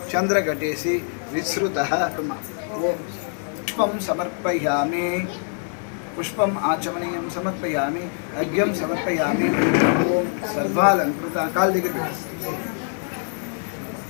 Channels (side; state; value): right; silent; 63 dB below the other